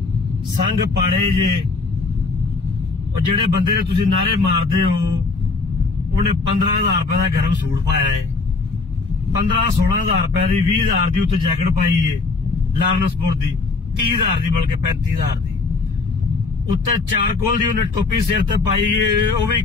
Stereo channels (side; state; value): right; quieter; 4.1 dB